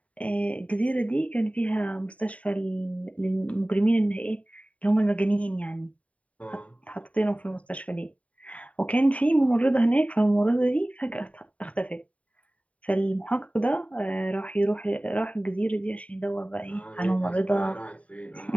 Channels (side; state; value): right; late; 0.067 ms